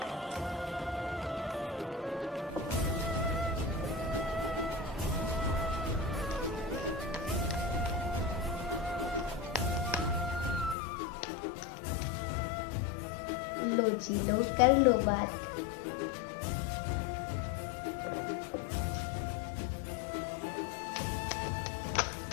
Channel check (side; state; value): right; drops out; at 10.8 s